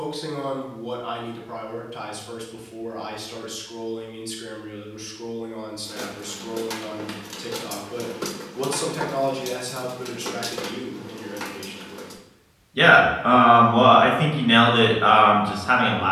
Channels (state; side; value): identical; both; correlation 1.00